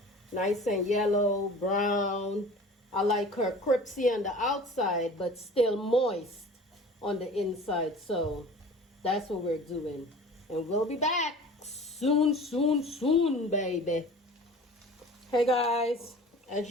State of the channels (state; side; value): normal; both; correlation 0.42